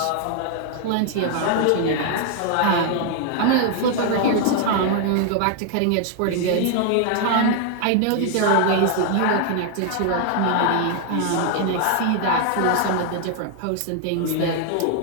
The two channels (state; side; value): different; both; correlation 0.00